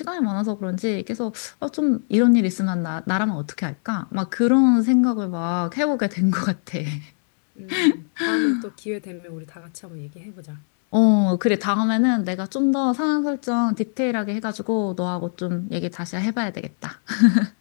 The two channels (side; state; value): right; silent; 64 dB below the other